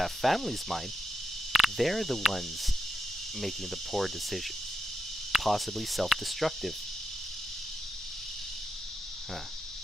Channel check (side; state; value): both; normal; correlation 0.84